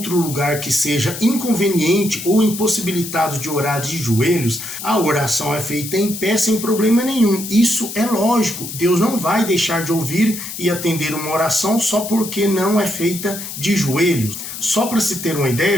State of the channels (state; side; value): noise; left; hiss, 9 dB below the sound